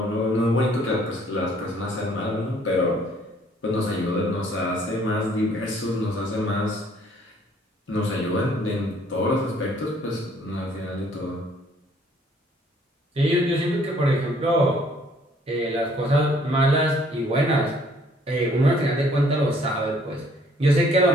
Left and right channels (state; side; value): normal; both; correlation 0.61